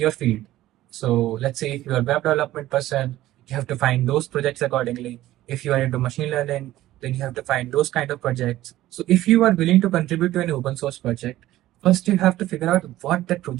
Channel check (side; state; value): left; quieter; 15.0 dB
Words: field? So let's say if you are a web development person, you have to find those projects accordingly. If you are into machine learning, then you have to find those kind of projects. So if you are willing to contribute to an open source project, first you have to figure out what that